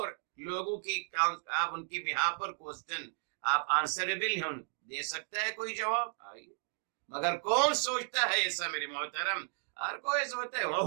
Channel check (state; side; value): silent; left; 55 dB below the other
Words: لوگوں کی آپ ان کی بیہا پر کوسچن آپ آنسربل ہیں، دے سکتا ہے کوئی جواب؟ آئیے، مگر کون سوچتا ہے ایسا میرے محترم؟ ہر کوئی سوچتا ہے